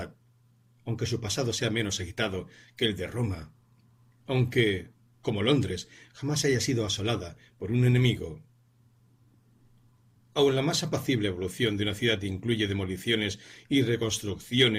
aunque su pasado sea menos agitado que el de Roma, aunque, como Londres, jamás haya sido asolada por un enemigo. Aun la más apacible evolución de una ciudad incluye demoliciones y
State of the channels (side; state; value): both; identical; correlation 1.00